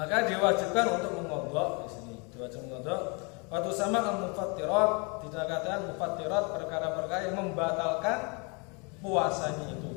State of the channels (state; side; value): quieter; right; 32.0 dB